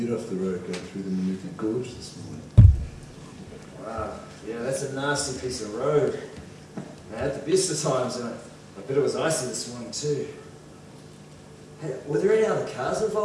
off the road going through the Manuka Gorge this morning. Wow, yeah, that's a nasty piece of road. I had the best of times, and I bet it was icy this morning too. Hey, were there any other cars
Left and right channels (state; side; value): identical; both; correlation 1.00